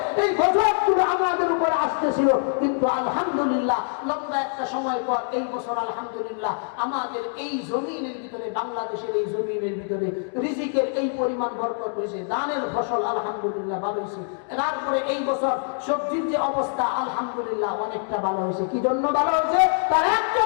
এই গজবগুলো আমাদের উপরে আসতেছিল, কিন্তু আলহামদুলিল্লাহ লম্বা একটা সময় পর এই বছর আলহামদুলিল্লাহ আমাদের এই জমিনের ভিতরে, বাংলাদেশের এই জমিনের ভিতরে রিজিকের এই পরিমাণ বরকত হয়েছে, দানের ফসল আলহামদুলিল্লাহ ভালো হয়েছে। তারপরে এই বছর সবজির যে অবস্থা আলহামদুলিল্লাহ অনেকটা ভালো হয়েছে। কি জন্য ভালো হয়েছে? তার একটা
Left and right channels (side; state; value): right; silent; 58 dB below the other